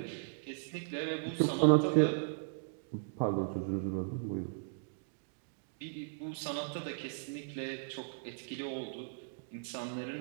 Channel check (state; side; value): silent; left; digital silence